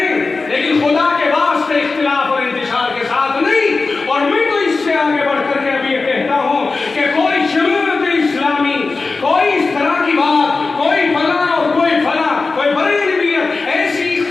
لیکن خدا کے واسطے اختلاف اور انتشار کے ساتھ نہیں۔ اور میں تو اس سے آگے بڑھ کر کے ابھی یہ کہتا ہوں کہ کوئی جماعت اسلامی، کوئی اس طرح کی بات، کوئی فلاں اور کوئی فلاں، کوئی بریلویت، ایسی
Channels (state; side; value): quieter; right; 3.9 dB